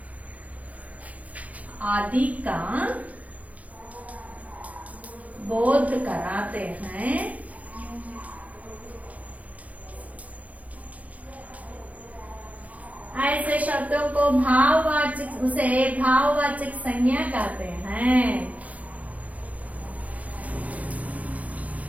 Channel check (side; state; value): left; late; 0.071 ms